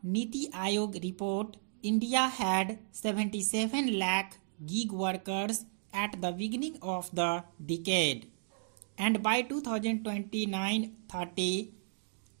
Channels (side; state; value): left; silent; digital silence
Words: Niti Aayog report, India had 77 lakh gig workers at the beginning of the decade, and by 2029-30,